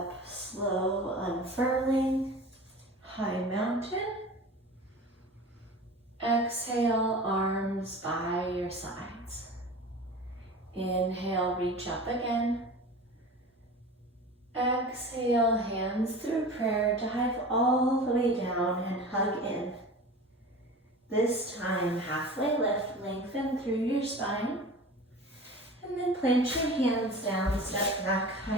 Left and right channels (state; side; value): normal; both; correlation 0.36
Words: slow unfurling. High mountain. Exhale, arms by your sides. Inhale, reach up again. Exhale, hands through prayer, dive all the way down and hug in. This time, halfway lift, lengthen through your spine. And then plant your hands down, step back,